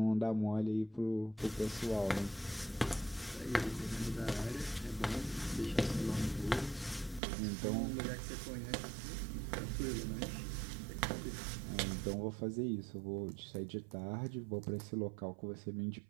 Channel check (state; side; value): drops out; left; at 7.2 s